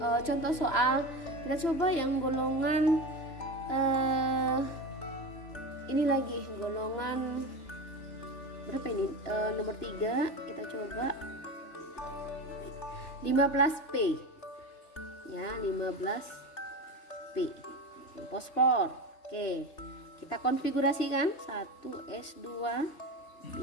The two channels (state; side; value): late; right; 2.9 ms